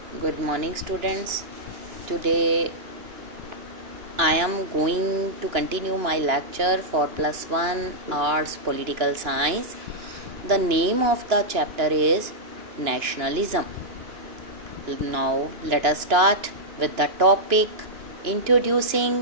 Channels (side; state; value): left; late; 2.9 ms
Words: Good morning, students. Today I am going to continue my lecture for +1 Arts Political Science. The name of the chapter is Nationalism. Now let us start with the topic introducing